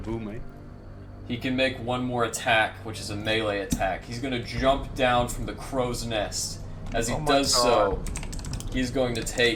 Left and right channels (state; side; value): identical; both; correlation 1.00